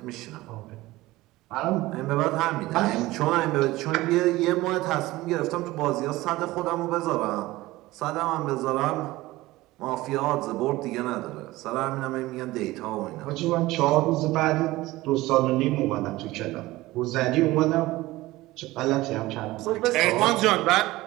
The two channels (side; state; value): left; quieter; 18.5 dB